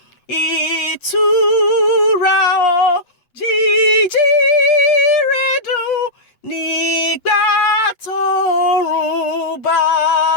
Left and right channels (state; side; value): late; right; 8.0 ms